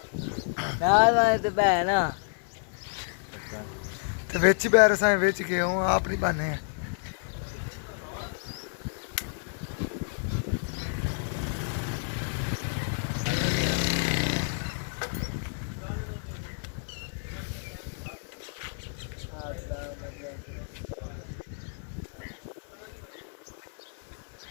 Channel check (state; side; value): silent; right; 58 dB below the other